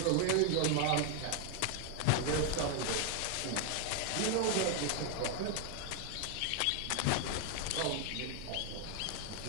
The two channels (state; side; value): different; both; correlation 0.00